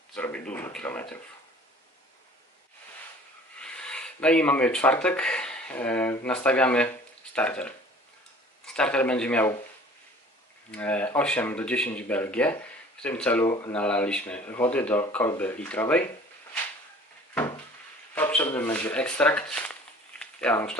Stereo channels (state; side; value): normal; both; correlation 0.48